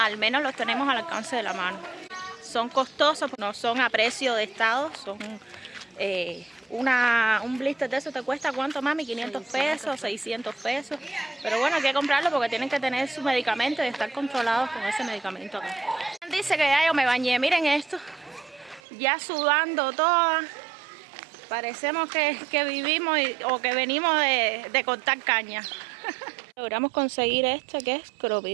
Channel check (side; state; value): left; drops out; at 18.8 s